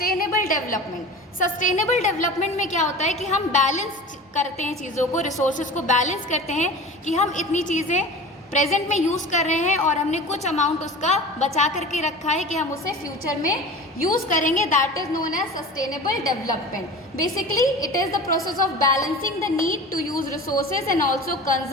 डेवलपमेंट। सस्टेनेबल डेवलपमेंट में क्या होता है कि हम बैलेंस करते हैं चीज़ों को, रिसोर्सेज को बैलेंस करते हैं कि हम इतनी चीज़ें प्रेजेंट में यूज़ कर रहे हैं और हमने कुछ अमाउंट उसका बचा करके रखा है कि हम उसे फ्यूचर में यूज़ करेंगे। That is known as sustainable development. Basically it is the process of balancing the need to use resources and also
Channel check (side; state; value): both; normal; correlation 0.36